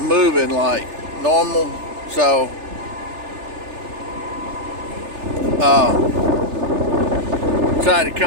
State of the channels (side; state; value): left; late; 3.3 ms